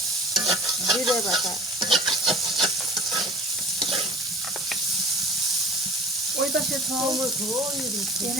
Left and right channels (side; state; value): both; normal; correlation 0.43